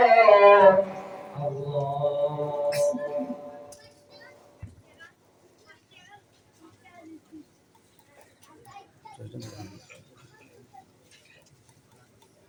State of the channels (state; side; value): identical; both; correlation 1.00